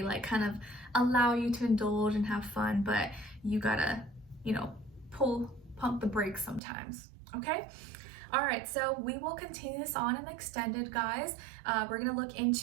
like kind of allow you to indulge and have fun, but you gotta, you know, pump the brakes sometimes, okay? All right, so we will continue this on and extended, guys. We're gonna look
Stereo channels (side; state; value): left; drops out; at 6.6 s